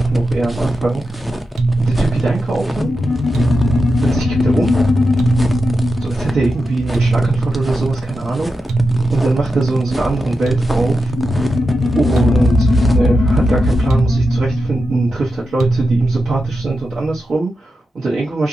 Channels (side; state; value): both; normal; correlation 0.89